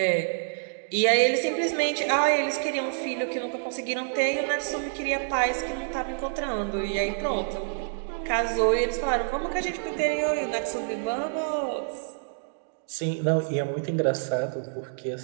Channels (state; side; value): silent; left; digital silence